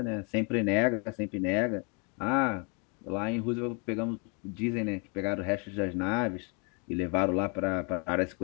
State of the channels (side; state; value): right; quieter; 34.8 dB